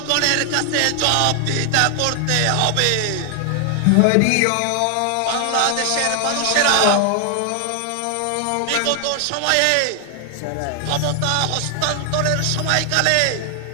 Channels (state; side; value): different; both; correlation 0.00